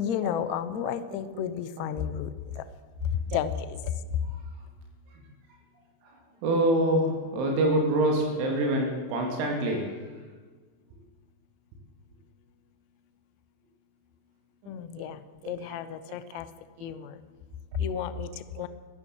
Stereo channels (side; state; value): left; late; 30 ms